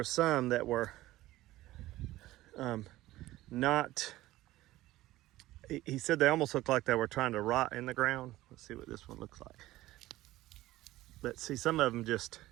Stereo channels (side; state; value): left; quieter; 16.5 dB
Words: some that were not, he said they almost looked like they were trying to rot in the ground. Let's see what this one looks like. But see, some of them just